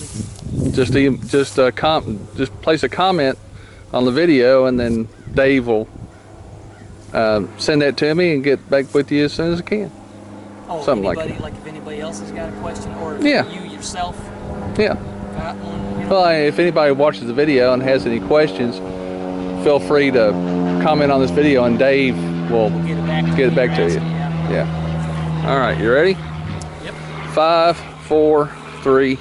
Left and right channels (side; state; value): both; identical; correlation 1.00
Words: just place a comment on the video, and then Dave will send that to me and get back with you as soon as I can. oh, Something anybody, like that. like if anybody else has got a question, or if Yeah. you yourself Yeah. got one, you know. Well, if anybody watches the video and has any questions, feel free to comment on this video, and Dave will We'll get it back to get it you. back to you. Yeah. All right. You ready? Yep. 5, 4, 3,